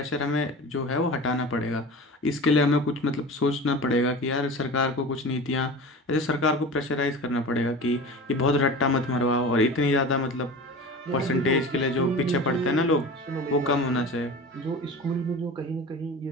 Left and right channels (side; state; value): both; normal; correlation 0.34